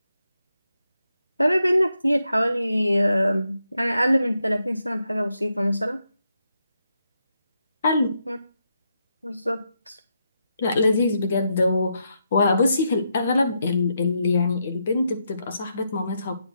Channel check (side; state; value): both; inverted; correlation -0.82